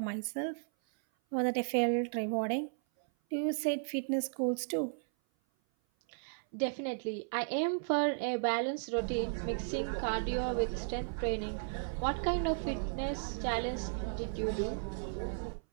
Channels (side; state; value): left; silent; 55 dB below the other